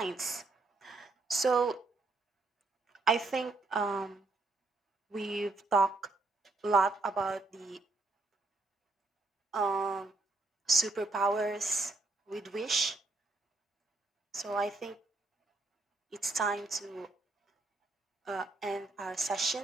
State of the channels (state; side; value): quieter; left; 3.3 dB